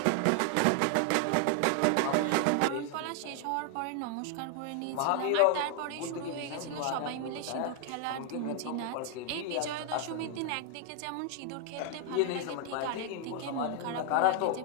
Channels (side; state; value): both; different; correlation 0.00